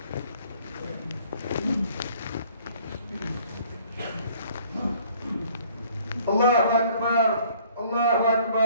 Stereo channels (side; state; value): both; inverted; correlation -0.58